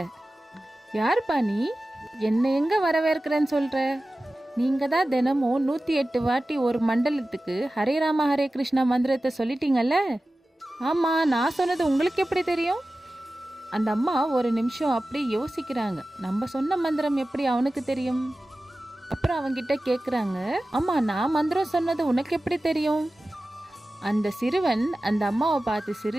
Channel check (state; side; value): normal; both; correlation 0.95